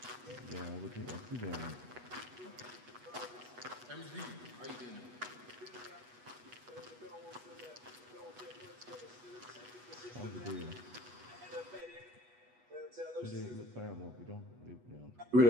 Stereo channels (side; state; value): left; late; 8.2 ms